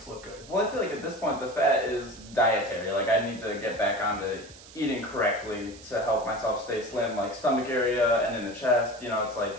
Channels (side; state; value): right; noise; hiss, 20 dB below the sound